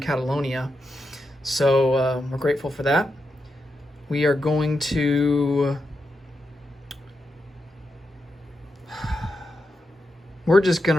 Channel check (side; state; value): both; normal; correlation 0.86